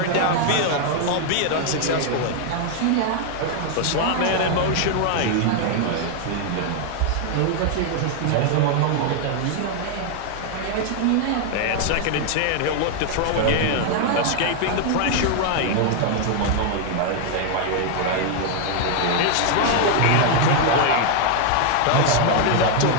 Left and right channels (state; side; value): different; both; correlation 0.00